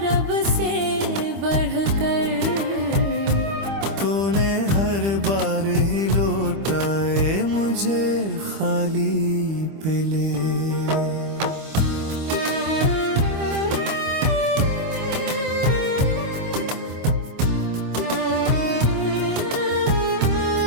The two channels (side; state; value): left; late; 25 ms